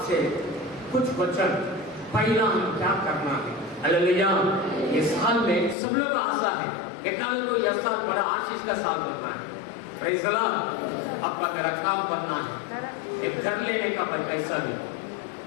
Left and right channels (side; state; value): right; drops out; at 5.8 s